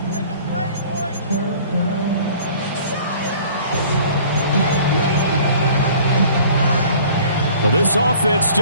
Well, this offense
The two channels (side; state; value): both; inverted; correlation -0.50